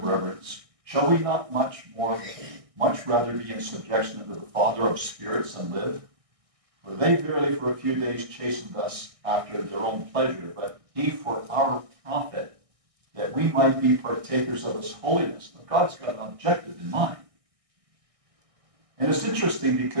reverence. Shall we not much rather be in subjection unto the Father of spirits and live? For they verily for a few days chastened us after their own pleasure, but he for our profit, that we might be partakers of his holiness. Now, God's got an objective in mind. And it's interesting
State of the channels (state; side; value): late; left; 1.6 ms